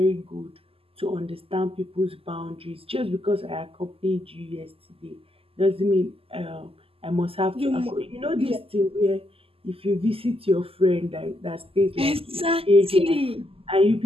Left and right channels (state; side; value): late; left; 0.27 ms